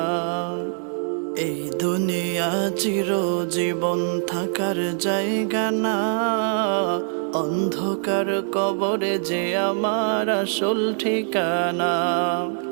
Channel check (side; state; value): left; silent; digital silence